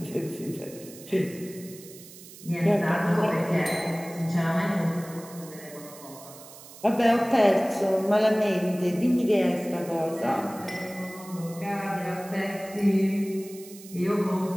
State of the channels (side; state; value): right; noise; hiss, 18 dB below the sound